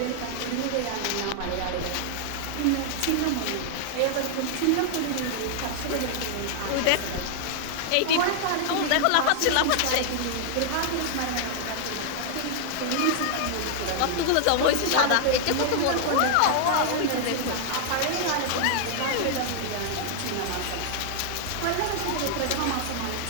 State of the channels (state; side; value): different; both; correlation -0.01